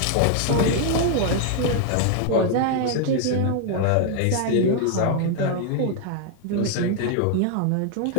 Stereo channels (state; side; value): different; both; correlation 0.00